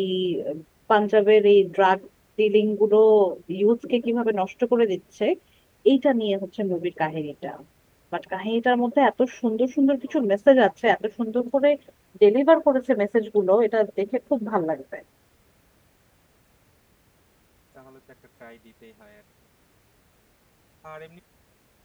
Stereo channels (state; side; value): identical; both; correlation 1.00